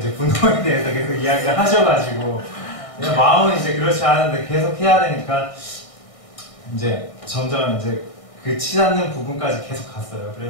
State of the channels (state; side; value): late; right; 1.6 ms